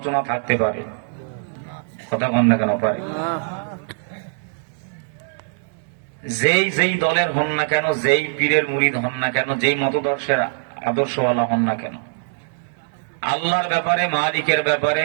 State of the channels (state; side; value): silent; left; 64 dB below the other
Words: থাকতে পারে? কথা বল না কেন? পারে। যেই যেই দলের হন না কেন, যেই পীরের মুরিদ হন না কেন, যেই মতদর্শের আদর্শওয়ালা হন না কেন, আল্লাহর ব্যাপারে, মালিকের ব্যাপারে,